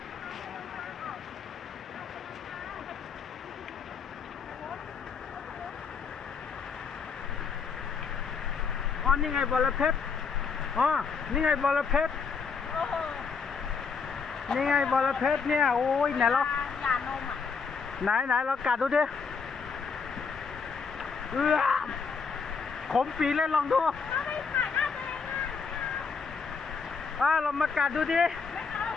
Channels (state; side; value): quieter; right; 5.4 dB